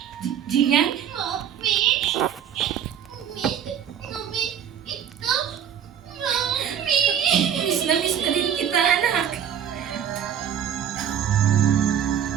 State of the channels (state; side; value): quieter; left; 9.1 dB